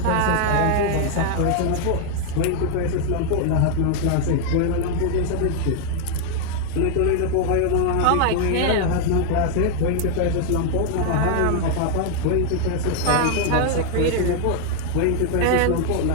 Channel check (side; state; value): both; different; correlation 0.00